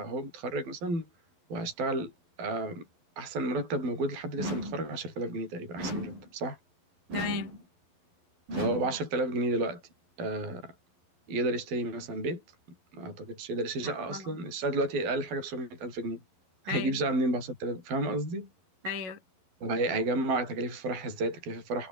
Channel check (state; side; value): late; left; 11 ms